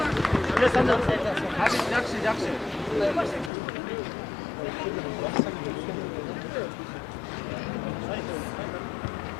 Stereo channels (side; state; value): right; drops out; at 3.5 s